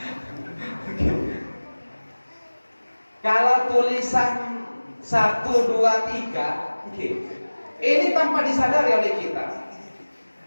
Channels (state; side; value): inverted; both; correlation -1.00